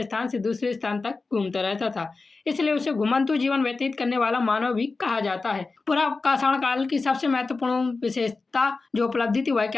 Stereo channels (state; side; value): quieter; right; 3.9 dB